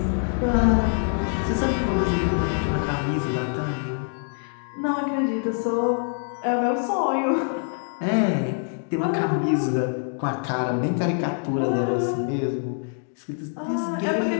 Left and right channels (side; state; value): right; silent; 62 dB below the other